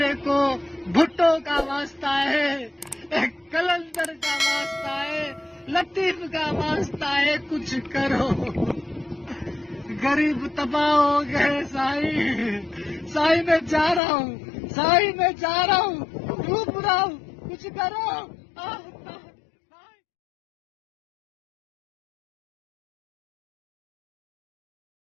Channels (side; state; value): right; drops out; at 14.0 s